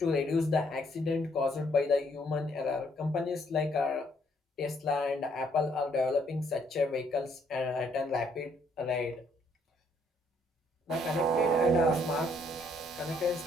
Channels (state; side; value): normal; both; correlation 0.68